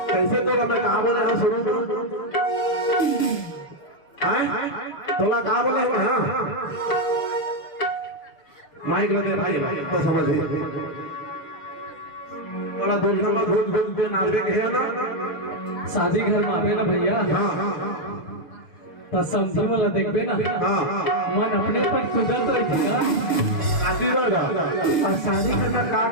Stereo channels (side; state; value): right; late; 6.7 ms